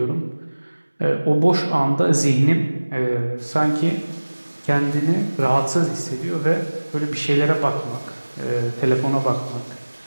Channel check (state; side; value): inverted; both; correlation -1.00